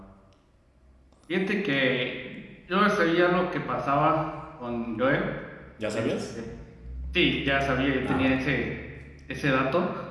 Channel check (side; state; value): both; identical; correlation 1.00